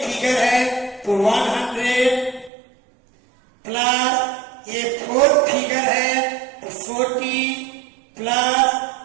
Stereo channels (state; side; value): drops out; left; at 2.5 s